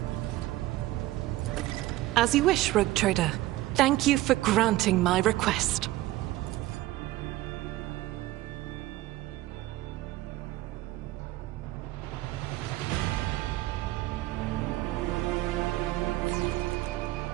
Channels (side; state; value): left; quieter; 16.8 dB